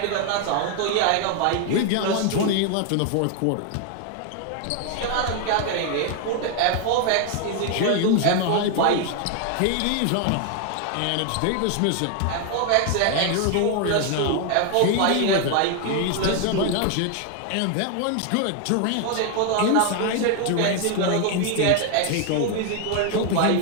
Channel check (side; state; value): both; different; correlation 0.01